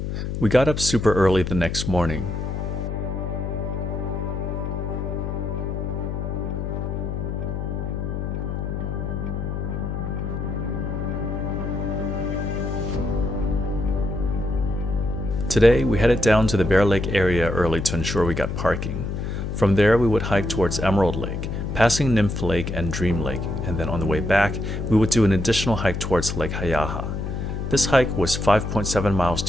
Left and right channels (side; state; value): left; noise; hum, 3 dB below the sound